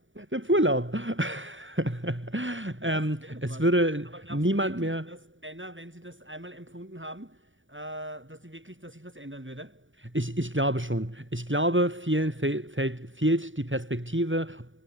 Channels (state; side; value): late; left; 0.56 ms